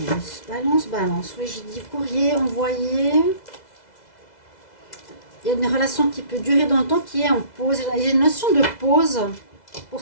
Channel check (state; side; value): late; right; 2.0 ms